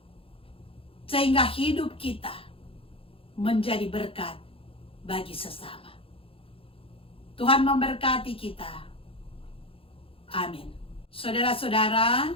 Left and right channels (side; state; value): right; late; 0.27 ms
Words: Sehingga hidup kita menjadi berkat bagi sesama. Tuhan memberkati kita. Amin. Saudara-saudara,